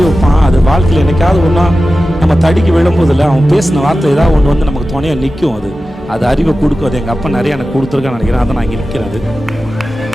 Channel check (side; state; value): both; normal; correlation 0.94